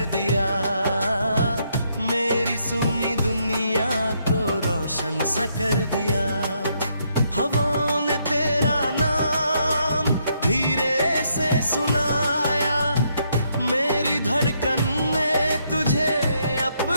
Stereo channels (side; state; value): both; inverted; correlation -0.75